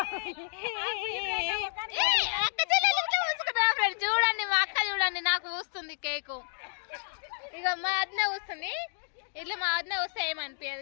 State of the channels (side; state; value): right; silent; 58 dB below the other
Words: చూడండి మా అక్క చూడండి నాకు పూస్తుంది కేకు. ఇక మా వద్ద కూస్తుంది. ఇట్లా మా వద్ద వస్తే